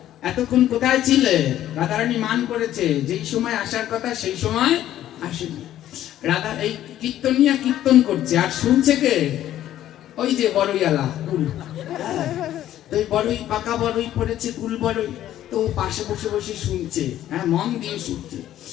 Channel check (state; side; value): quieter; right; 12.5 dB